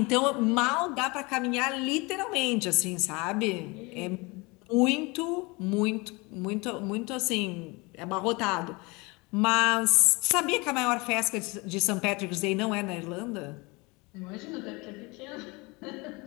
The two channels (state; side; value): quieter; right; 26.1 dB